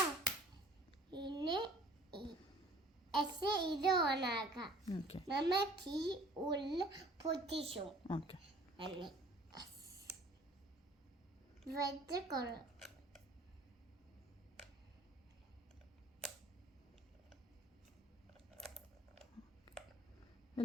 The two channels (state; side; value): normal; both; correlation 0.52